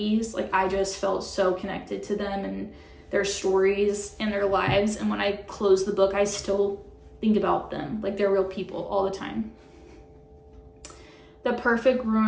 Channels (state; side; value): identical; both; correlation 1.00